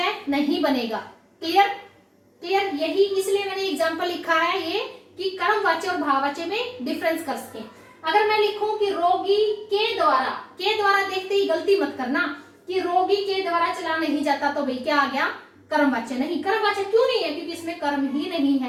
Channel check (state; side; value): identical; both; correlation 1.00